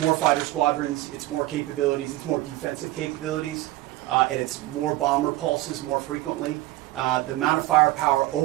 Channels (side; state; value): left; quieter; 17.2 dB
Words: fighter squadrons, it's more capabilities, it's more defensive capabilities, and it's more bomber pulses more frequently. The amount of firepower